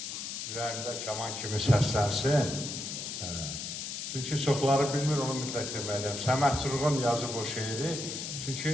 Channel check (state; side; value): noise; left; hiss, 5 dB below the sound